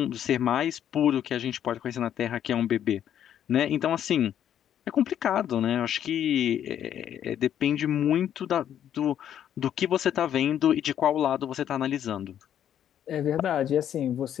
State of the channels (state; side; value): quieter; right; 10.1 dB